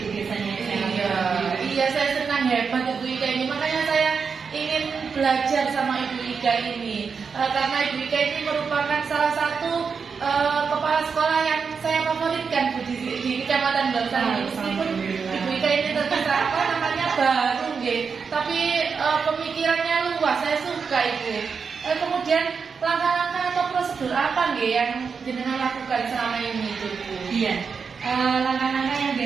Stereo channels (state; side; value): quieter; left; 5.7 dB